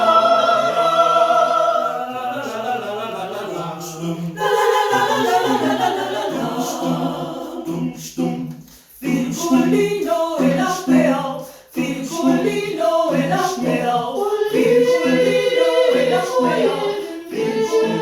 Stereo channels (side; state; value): both; identical; correlation 1.00